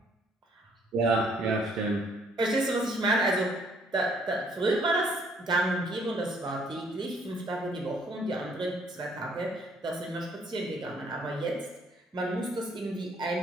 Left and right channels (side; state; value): both; normal; correlation 0.64